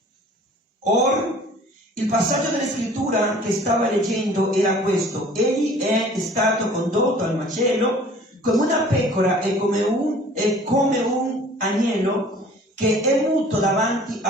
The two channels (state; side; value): normal; both; correlation 0.49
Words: Or il passaggio della scrittura che stava leggendo era questo: egli è stato condotto al macello come una pecora e come un agnello che è muto davanti